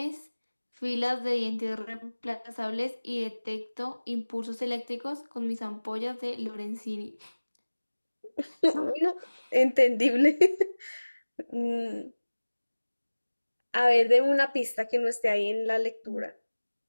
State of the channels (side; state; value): both; inverted; correlation -1.00